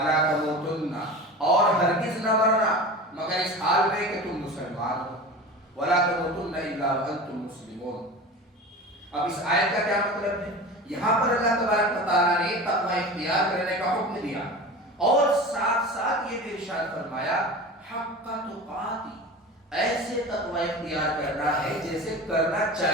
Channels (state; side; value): normal; both; correlation 0.33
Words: تموتن، اور ہرگز نہ مرنا مگر اس حال میں کہ تم مسلمان ہو، وَلَا تَمُوتُنَّ إِلَّا وَأَنْتُمْ مُسْلِمُونَ۔ اب اس آیت کا کیا مطلب ہے؟ یہاں پر اللہ تبارک و تعالیٰ نے تقوی اختیار کرنے کا حکم دیا اور ساتھ ساتھ یہ بھی ارشاد فرمایا حق تقاتی، ایسے تقوی اختیار کرنا ہے جیسے کرنا